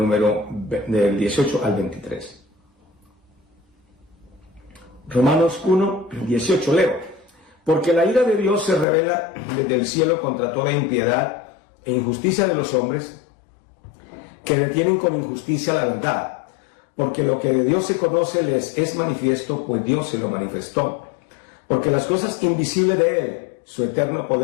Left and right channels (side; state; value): right; drops out; at 8.8 s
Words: 18 al 23. Romanos 1, 18, leo. Porque la ira de Dios se revela desde el cielo contra toda impiedad e injusticia de los hombres que detienen con injusticia la verdad. Porque lo que de Dios se conoce les es manifiesto, pues Dios se lo manifestó. Porque las cosas invisibles de Él, su eterno